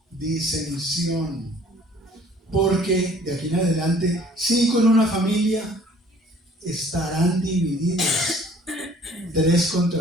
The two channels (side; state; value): both; normal; correlation 0.55